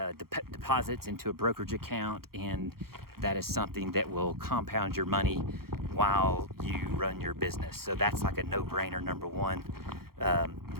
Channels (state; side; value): late; left; 0.94 ms